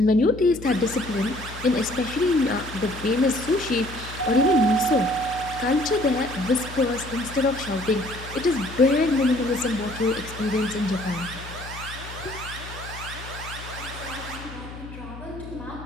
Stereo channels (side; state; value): left; noise; hum, 13 dB below the sound